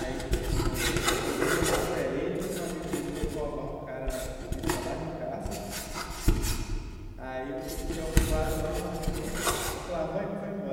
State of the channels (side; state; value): both; identical; correlation 1.00